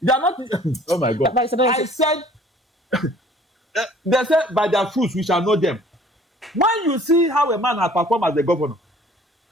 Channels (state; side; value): normal; both; correlation 0.53